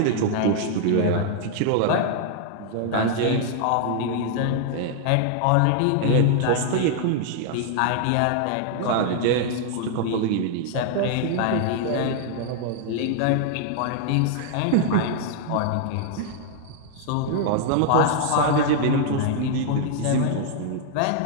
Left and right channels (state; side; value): different; both; correlation 0.00